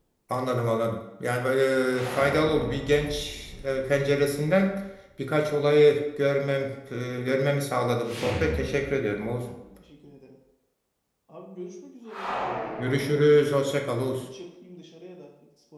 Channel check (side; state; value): both; identical; correlation 1.00